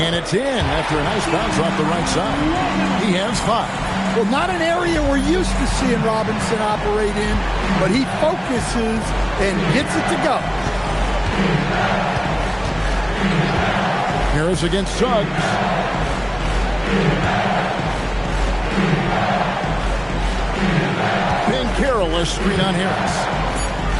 it's in after a nice bounce off the right side. He has 5. Well, not an area we're used to seeing Robinson operate in, but he focuses and gets it to go. Harris against Suggs. Banchero, a screen on Harris.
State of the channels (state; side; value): identical; both; correlation 1.00